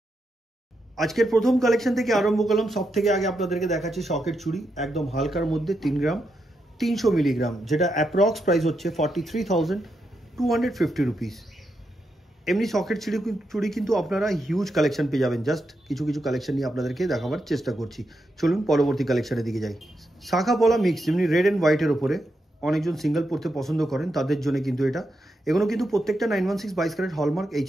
আজকের প্রথম কালেকশন থেকে আরম্ভ করলাম। সব থেকে আগে আপনাদেরকে দেখাচ্ছি শকের চুড়ি, একদম হালকার মধ্যে 3 গ্রাম 300 মিলিগ্রাম, যেটা অ্যাপ্রক্স প্রাইস হচ্ছে 43,250 রুপিস। এমনি শকের চুড়ি কিন্তু আপনারা হিউজ কালেকশন পেয়ে যাবেন। জাস্ট কিছু কিছু কালেকশন নিয়ে আপনাদেরকে দেখাবার চেষ্টা করছি। চলুন পরবর্তী কালেকশনের দিকে যাই। শাখা পলা মিক্স, যেমনি রেড অ্যান্ড হোয়াইটের ওপরে অনেকজন সিঙ্গেল পড়তে পছন্দ করেন, তাদের জন্য কিন্তু এটা। এগুলো কিন্তু প্রত্যেকটা 916 22 ক্যারেট হলমার্ক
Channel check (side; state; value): both; normal; correlation 0.84